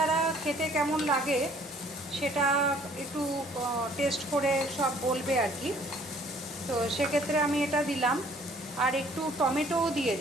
খেতে কেমন লাগে সেটা একটু টেস্ট করে সব বলবে আর কি। তো সেক্ষেত্রে আমি এটা দিলাম আর একটু টমেটোও দিয়ে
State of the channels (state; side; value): normal; both; correlation 0.58